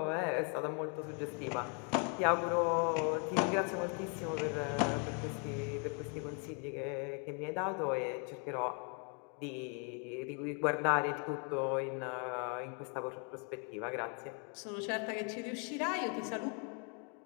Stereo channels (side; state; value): right; quieter; 38.3 dB